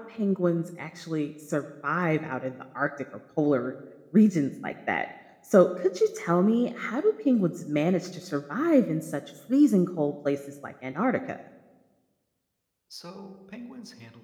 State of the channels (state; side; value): identical; both; correlation 1.00